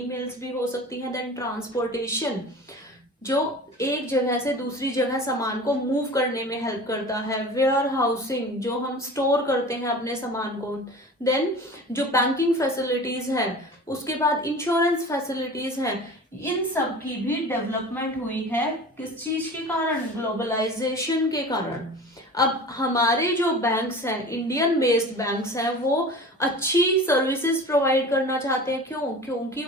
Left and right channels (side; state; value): both; normal; correlation 0.38